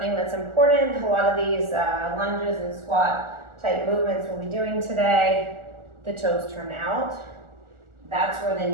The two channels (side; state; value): left; late; 1.4 ms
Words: that's important. A lot of these lunges and squat type movements we'll be doing today, the toes turn out. That's where the